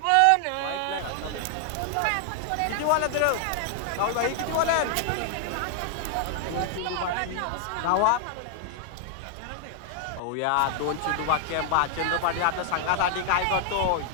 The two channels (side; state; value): both; different; correlation 0.00